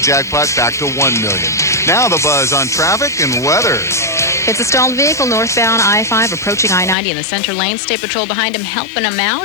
jackpot back to $1 million. Now the Buzz on traffic and weather. It's a stalled vehicle northbound I-5 approaching I-90 in the center lane. State Patrol behind him helping him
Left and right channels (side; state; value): right; drops out; at 7.0 s